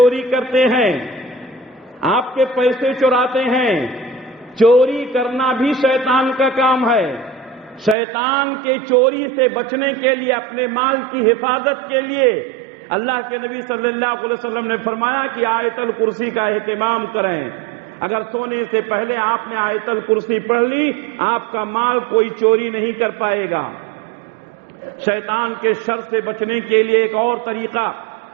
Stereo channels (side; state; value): left; drops out; at 8.0 s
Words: کرتے ہیں، آپ کے پیسے چراتے ہیں۔ چوری کرنا بھی شیطان کا کام ہے۔ شیطان کے چوری سے بچنے کے لیے، اپنے مال کی حفاظت کے لیے اللہ کے نبی صلی اللہ علیہ وسلم نے فرمایا کہ آیت الکرسی کا اہتمام کریں۔ اگر سونے سے پہلے آپ نے آیت الکرسی پڑھ لی آپ کا مال کوئی چوری نہیں کر پائے گا۔ شیطان کے شر سے بچنے کے لیے ایک اور طریقہ